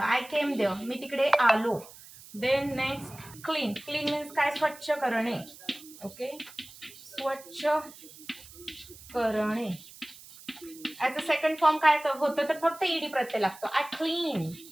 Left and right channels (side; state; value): right; noise; hiss, 19 dB below the sound